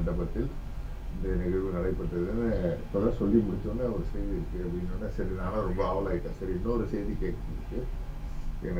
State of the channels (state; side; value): identical; both; correlation 1.00